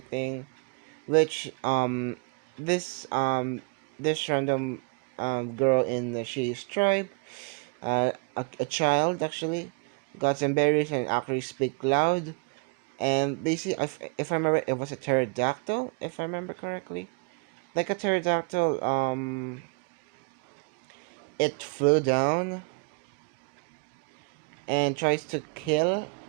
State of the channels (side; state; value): left; quieter; 32.6 dB